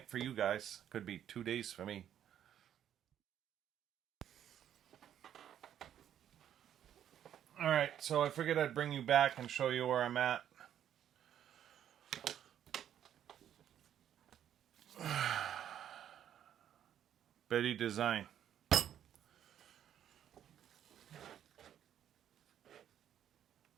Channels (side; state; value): left; quieter; 10.2 dB